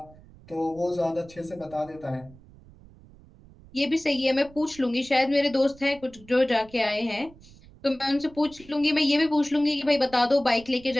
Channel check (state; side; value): noise; right; rumble, 23 dB below the sound